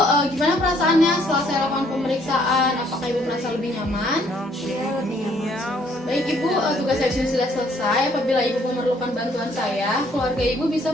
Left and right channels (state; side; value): normal; both; correlation 0.65